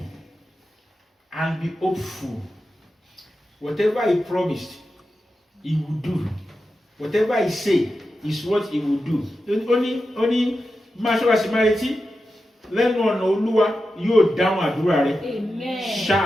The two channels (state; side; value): normal; both; correlation 0.91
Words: and be hopeful. Whatever he promised, he will do. Whatever he said is what he will do. Only máa ṣọ́ra sí máa retí. Lẹ́nu ọ̀nà Olúwa yóò dáhùn àdúrà rẹ. Amen.